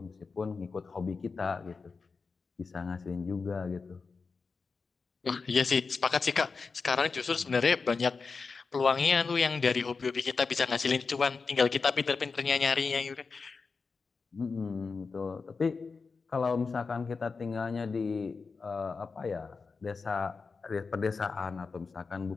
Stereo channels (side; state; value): right; quieter; 4.7 dB